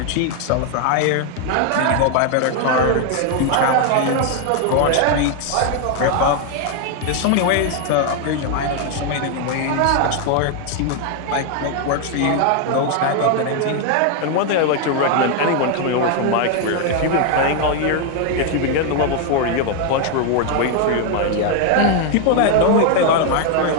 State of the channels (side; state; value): both; different; correlation 0.01